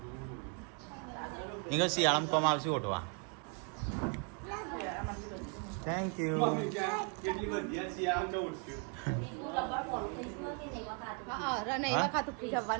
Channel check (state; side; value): quieter; left; 39.2 dB